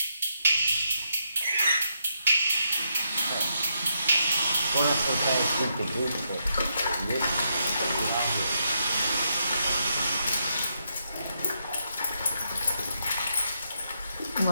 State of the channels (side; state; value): both; inverted; correlation -0.79